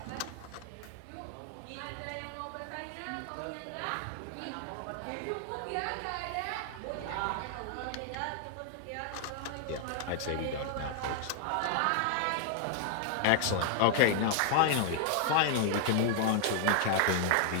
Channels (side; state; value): both; different; correlation 0.00